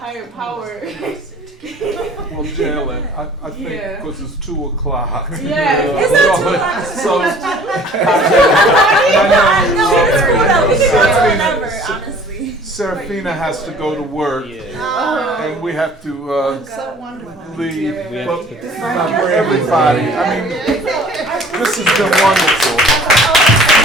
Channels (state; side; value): normal; both; correlation 0.50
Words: power. Well, Jalen, I think because it's 2 o'clock. Yeah, it's not 2 o'clock. Serafina has to go to work, and we have to leave. But everybody, I mean, this has been wonderful.